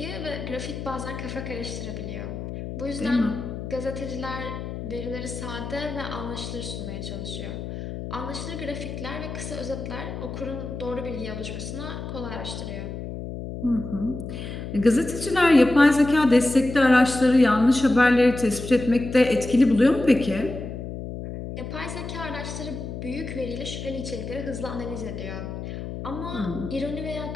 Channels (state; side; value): noise; left; hum, 7 dB below the sound